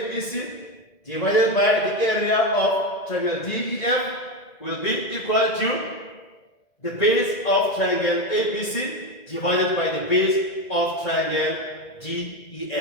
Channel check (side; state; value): right; late; 2.0 ms